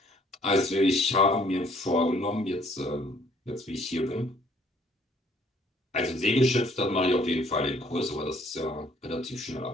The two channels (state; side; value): normal; both; correlation 0.61